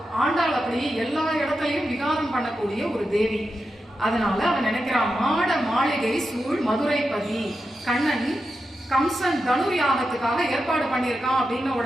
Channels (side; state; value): both; normal; correlation 0.89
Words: ஆண்டாள் அப்படி எல்லா இடத்துலயும் விகாரம் பண்ணக்கூடிய ஒரு தேவி. அதனால அவன் நினைக்கிறான், மாட மாளிகை சூழ் மதுரைப்பதி. கண்ணன் கம்சன் தனுர் யாகத்துக்காக ஏற்பாடு பண்ணியிருக்கான் அப்படின்னு